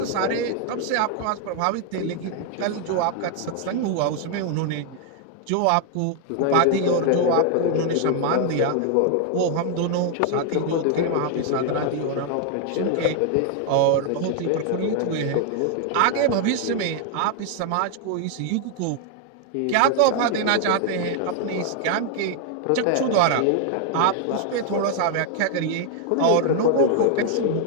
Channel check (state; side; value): different; both; correlation 0.00